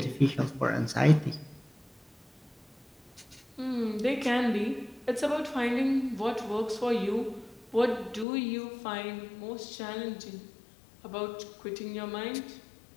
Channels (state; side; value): drops out; right; at 8.2 s